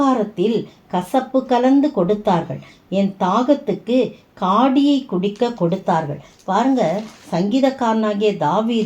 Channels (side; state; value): both; identical; correlation 1.00